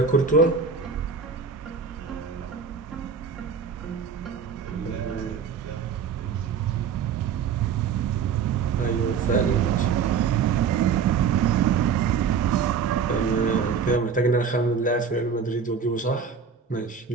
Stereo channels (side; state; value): left; quieter; 6.1 dB